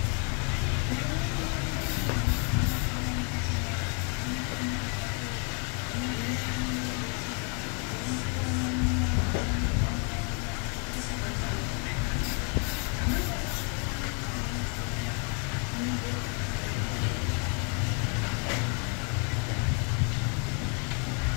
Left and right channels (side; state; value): right; quieter; 38.1 dB